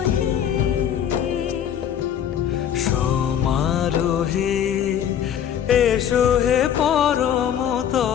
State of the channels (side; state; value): right; quieter; 9.4 dB